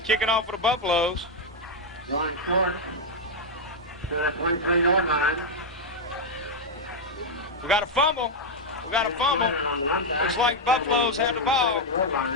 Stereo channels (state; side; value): normal; both; correlation 0.00